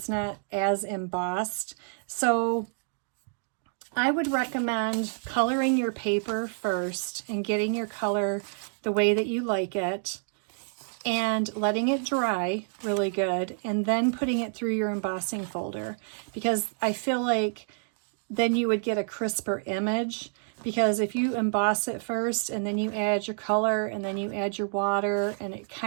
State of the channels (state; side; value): silent; left; digital silence